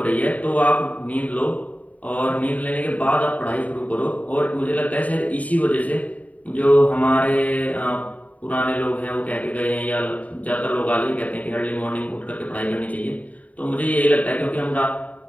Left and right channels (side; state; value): right; late; 0.070 ms